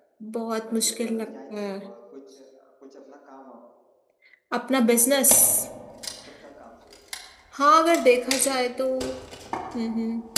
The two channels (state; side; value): identical; both; correlation 1.00